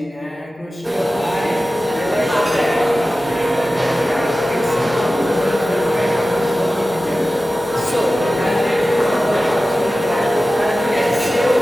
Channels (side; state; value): both; normal; correlation 0.95